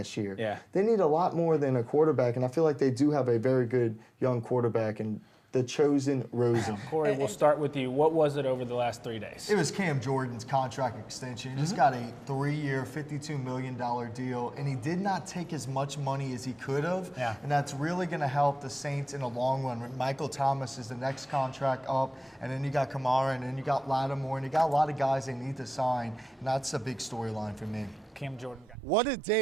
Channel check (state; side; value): normal; both; correlation 0.96